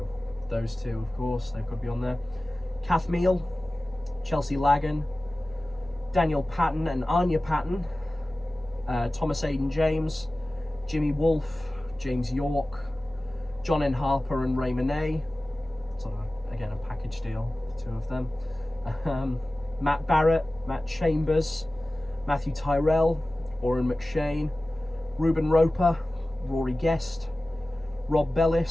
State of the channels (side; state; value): both; normal; correlation 0.97